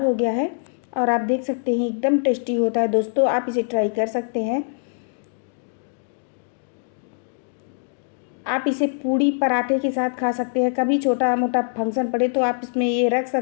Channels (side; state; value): right; silent; digital silence